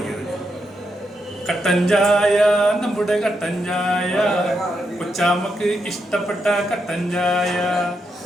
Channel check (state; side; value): normal; both; correlation 0.83